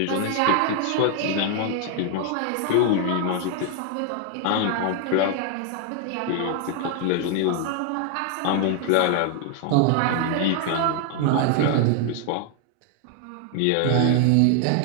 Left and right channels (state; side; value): different; both; correlation 0.00